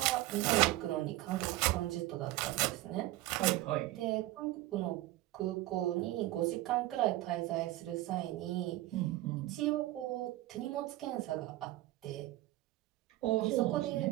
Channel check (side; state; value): left; quieter; 16.9 dB